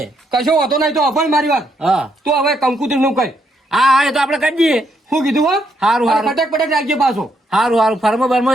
કશો વાંધો નહીં. તો અભણ મારી વાત હા તું હવે કંકુતરી નું કઈ હા એ તો આપણે કરી દઈએ. શું કીધું હો? હારું, હારું. ફટક પટક રાખજે પાછો. સારું ફર્મો બર્મો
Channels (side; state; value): both; normal; correlation 0.76